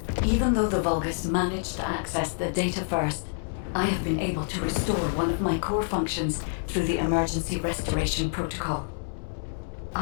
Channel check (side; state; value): right; silent; 60 dB below the other